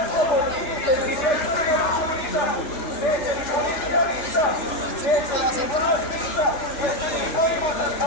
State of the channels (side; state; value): right; late; 3.4 ms